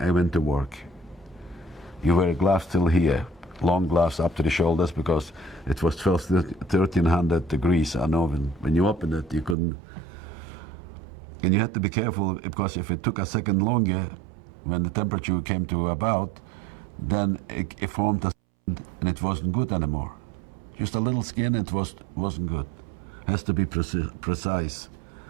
went to work. You wear gloves till here, long gloves up to the shoulders, because it was 1300 degrees. I know when you open it, you couldn't. And you had to be careful, because if it took a second longer, when the temperature came to about, then it formed a skin, and it wasn't good anymore. Just a little skin, it wasn't good. Has to be precise.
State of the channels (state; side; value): drops out; left; at 9.6 s